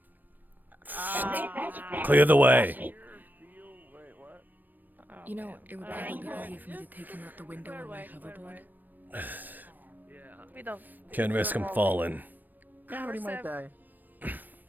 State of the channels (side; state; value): left; late; 0.089 ms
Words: Clear the way. You know, it would probably be easier for me to take him out the window on my hoverboard. We don't. Can't risk him falling. Yeah, but he might die.